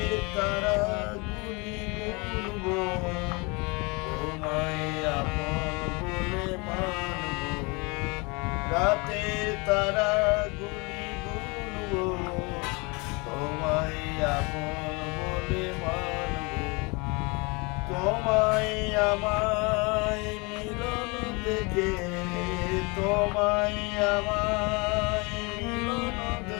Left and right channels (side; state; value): right; quieter; 28.7 dB